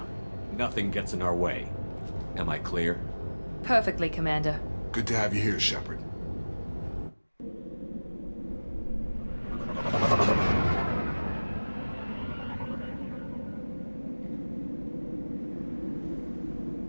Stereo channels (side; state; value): both; inverted; correlation -1.00